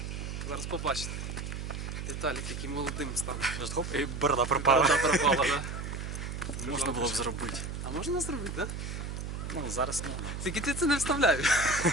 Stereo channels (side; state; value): right; noise; hum, 6 dB below the sound